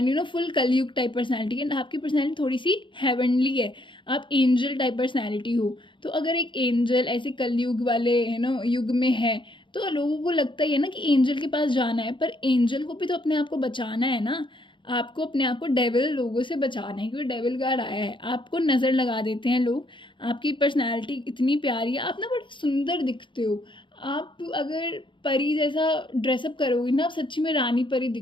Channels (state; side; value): late; right; 0.24 ms